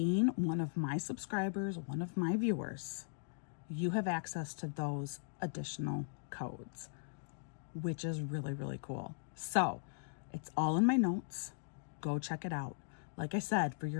one of my subscribers, one of my viewers, you have access to those additional codes, which is really cool. So it's all in my notes. Go check it out. Like I said, for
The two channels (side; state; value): right; silent; digital silence